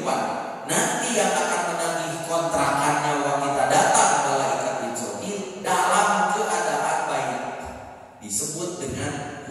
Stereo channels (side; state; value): both; identical; correlation 1.00